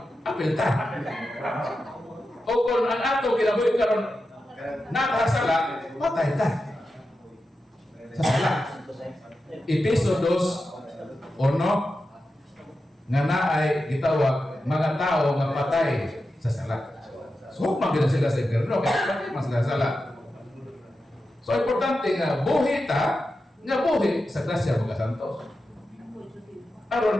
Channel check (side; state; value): both; normal; correlation 0.90